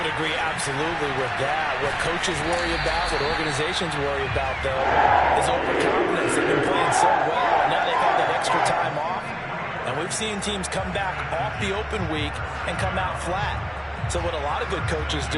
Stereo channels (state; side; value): identical; both; correlation 1.00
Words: would agree absolutely with that. What coaches worry about, what organizations worry about, though, is overconfidence. They've been playing so well, and now they've had that extra time off. And we've seen teams come back off the open week and come out flat. So what a lot of good coaches